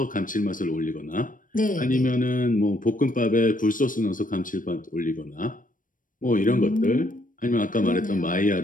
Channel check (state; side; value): late; right; 0.39 ms